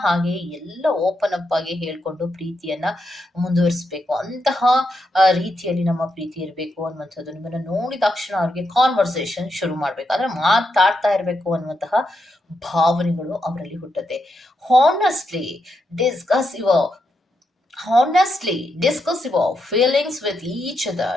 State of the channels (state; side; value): normal; both; correlation 0.83